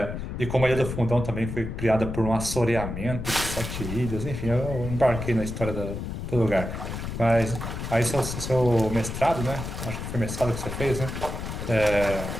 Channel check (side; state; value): left; noise; rumble, 6 dB below the sound